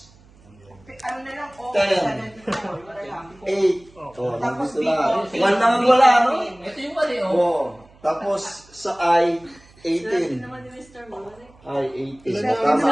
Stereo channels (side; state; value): right; noise; hum, 27 dB below the sound